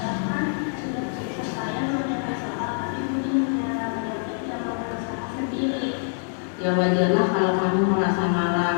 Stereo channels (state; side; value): silent; right; digital silence